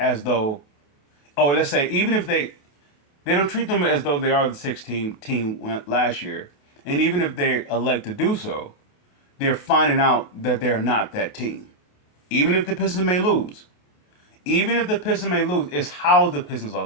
though. Oh, let's say even if they don't treat them as though they are the 16 team last year, and even if they elect to do so, they're finding out that they're not that team. Even if the Pistons may lose, it's how the Pistons are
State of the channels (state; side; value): late; right; 28 ms